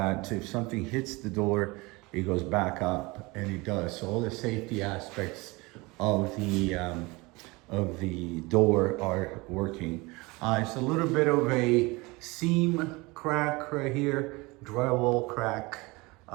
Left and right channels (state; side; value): quieter; left; 24.2 dB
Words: if something hits the door, it goes back up, and it does. So all the safety aspects of the door are working. It's a little bit of a seam crack right here, drywall crack.